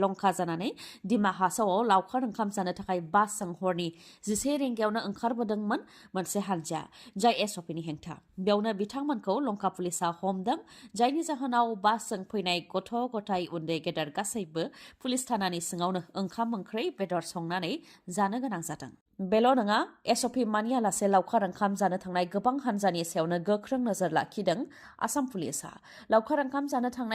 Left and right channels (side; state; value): both; identical; correlation 1.00